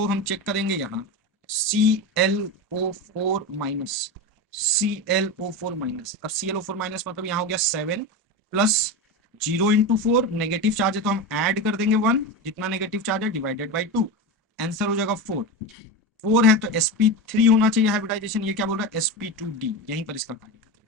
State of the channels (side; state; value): both; normal; correlation 0.20